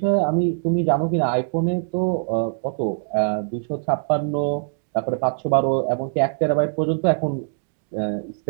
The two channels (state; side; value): silent; left; digital silence